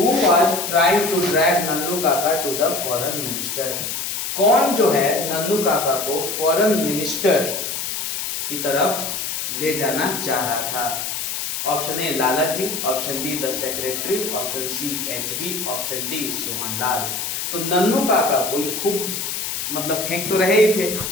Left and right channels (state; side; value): noise; left; hiss, 3 dB below the sound